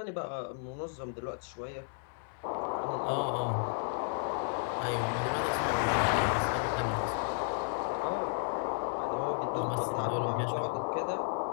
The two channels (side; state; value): right; silent; digital silence